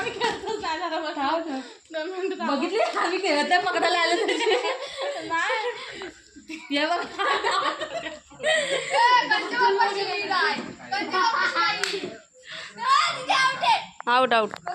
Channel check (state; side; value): identical; both; correlation 1.00